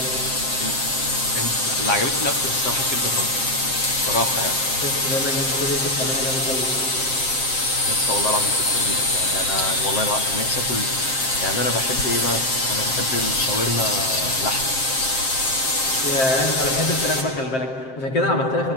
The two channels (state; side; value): late; right; 7.6 ms